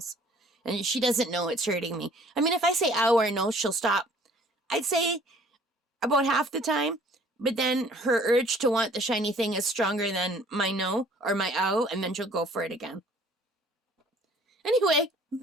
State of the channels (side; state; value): both; normal; correlation 0.55